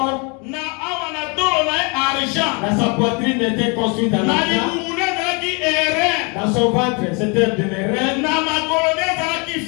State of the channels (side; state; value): right; quieter; 32.4 dB